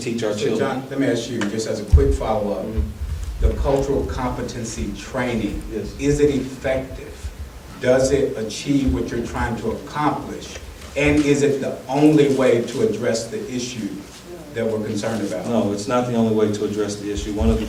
our children. John, let me ask you, just as a quick follow-up, the cultural competency training, Yes. is it effective? Does it achieve what you're trying to accomplish? And is it the only way to address the issue that we're concerned about? No, it's not the only way to address the issue. One of the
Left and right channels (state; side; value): identical; both; correlation 1.00